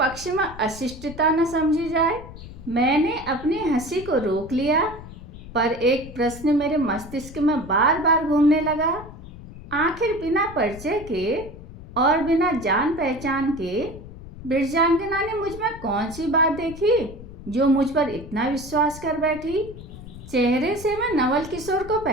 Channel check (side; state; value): left; noise; rumble, 15 dB below the sound